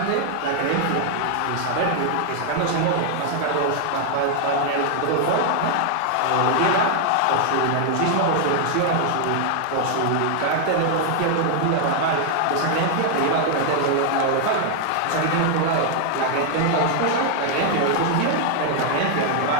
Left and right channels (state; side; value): different; both; correlation 0.00